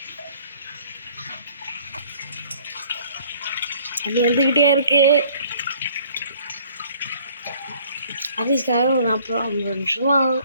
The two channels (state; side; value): inverted; both; correlation -0.57